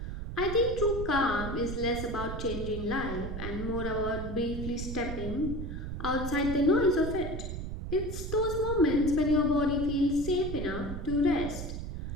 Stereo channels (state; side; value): noise; right; rumble, 6 dB below the sound